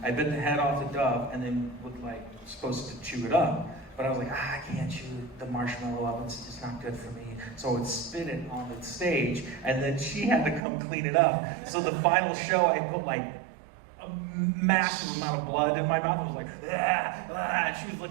I bit the head off the dove and then was like supposed to chew it up. But I was like, I can't chew the marshmallow up, it's just not good for me. So I would spit it on the stage and then she had to come clean it up. So the final show I put like a massive amount of blood in my mouth. I was like, and she was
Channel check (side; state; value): left; drops out; at 10.6 s